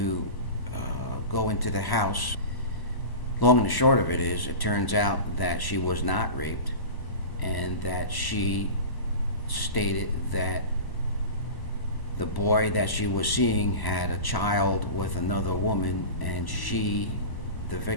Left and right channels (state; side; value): late; right; 1.0 ms